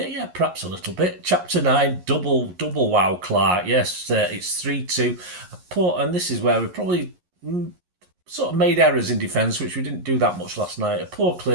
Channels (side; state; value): left; late; 11 ms